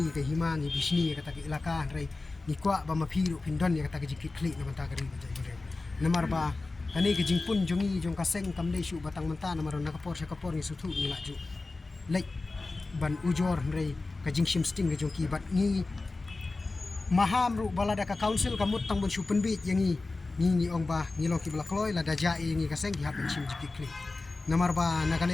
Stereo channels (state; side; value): quieter; right; 3.4 dB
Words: ke hima ni bisni ka ta ke ilaka rai ni kwa ba ma phiru phindon ya ka ta ke jikit kli na manta kari ba jai namar ba kani ke jingpun jongi jong ka seng kam dei shu batang manta namar na ka por ni suthu ni la ju lek ban ujor rai ka jingshim sting ke jong ki bat ni maham ru balada ka council kamut tang bon shu penbit yangi ni ong ba ni lo ki blakloi la da ja ni ka seng ki ha ben shim jikit kli namar ba